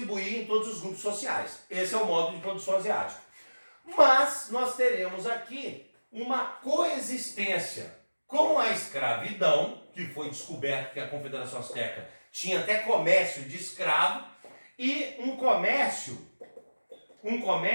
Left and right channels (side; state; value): both; inverted; correlation -1.00